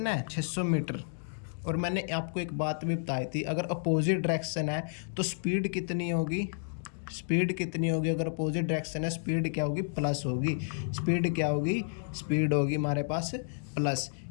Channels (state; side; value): silent; right; digital silence